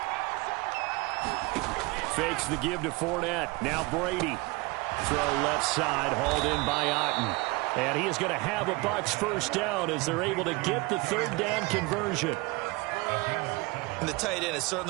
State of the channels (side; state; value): left; quieter; 24.8 dB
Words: Fakes the give to Fournette. Now Brady. Throw left side, hauled in by Otten. And he is going to have a Bucs 1st down as they're able to get the 3rd down conversion. And the tight end is